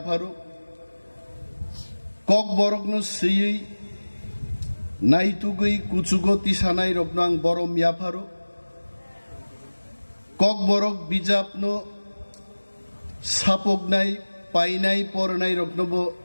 kok borokno siyei naitugui kuchugo tisanai rokno ang borom yafaru kok borok bijapno sapognai painai pornai rokno bo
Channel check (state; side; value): inverted; both; correlation -1.00